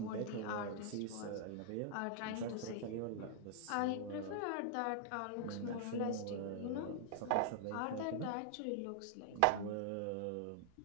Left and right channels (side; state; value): both; different; correlation -0.01